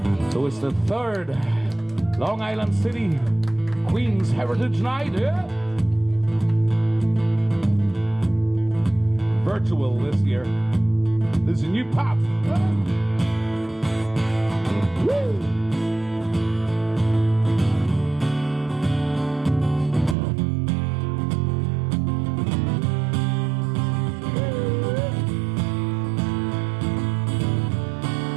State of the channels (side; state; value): left; drops out; at 20.2 s